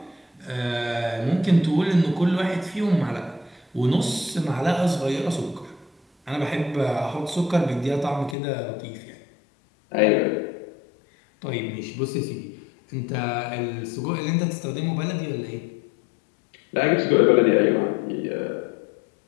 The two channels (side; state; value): right; drops out; at 8.3 s